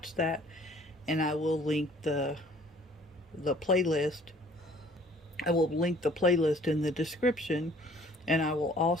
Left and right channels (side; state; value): both; normal; correlation 0.56